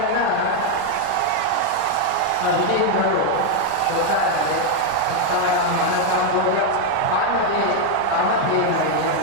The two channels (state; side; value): different; both; correlation 0.01